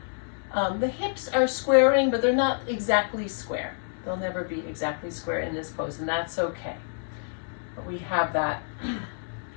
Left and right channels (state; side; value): silent; right; digital silence